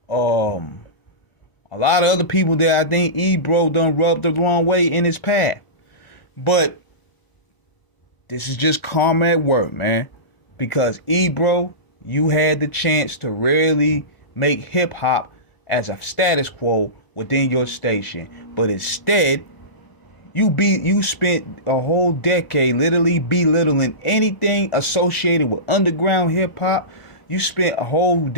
a lot of other people that I think Ebro done rubbed the wrong way in his path. But this is just karma at work, man. Because Ebro, you had the chance to really make hip hop as a status quo within your station. But instead, you spent a whole decade literally belittling anything associated with underground hip hop. You spent a whole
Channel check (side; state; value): right; late; 1.0 ms